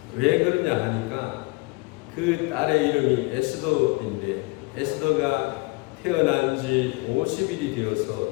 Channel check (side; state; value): right; quieter; 25.9 dB